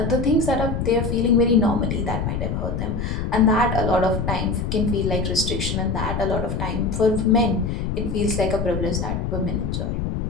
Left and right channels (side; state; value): left; noise; rumble, 2 dB below the sound